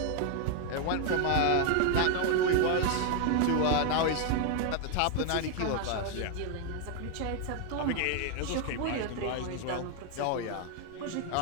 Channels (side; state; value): both; different; correlation 0.01